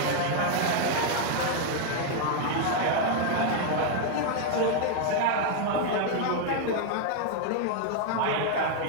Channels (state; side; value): different; both; correlation 0.00